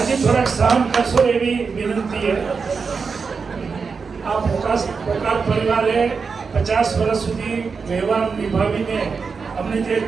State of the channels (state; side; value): quieter; left; 5.2 dB